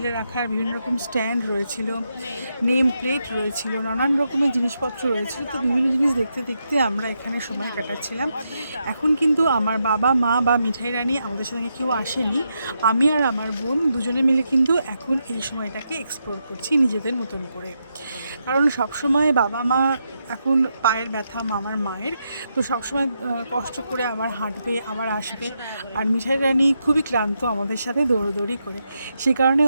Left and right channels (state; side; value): inverted; both; correlation -0.83